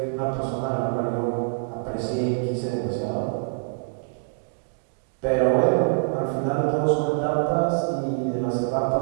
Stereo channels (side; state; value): left; silent; digital silence